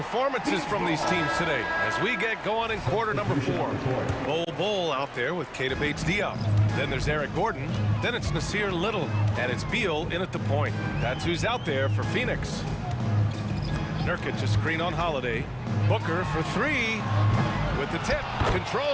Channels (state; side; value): identical; both; correlation 1.00